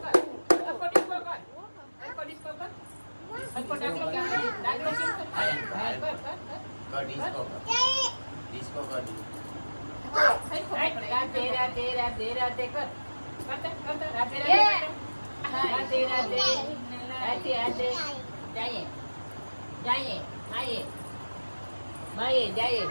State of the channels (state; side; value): inverted; both; correlation -1.00